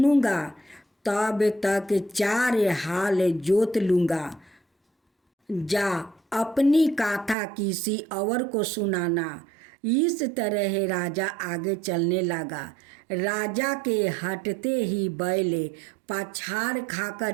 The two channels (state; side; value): drops out; left; at 7.4 s